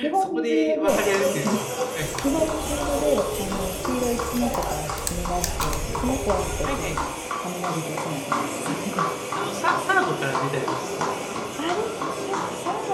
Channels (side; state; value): both; identical; correlation 1.00